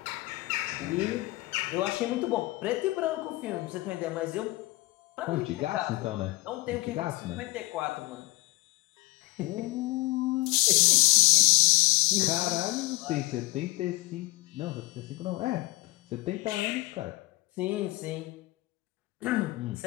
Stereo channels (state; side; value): quieter; right; 21.6 dB